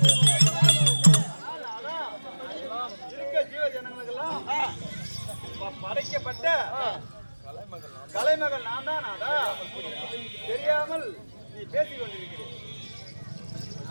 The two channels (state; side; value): inverted; both; correlation -1.00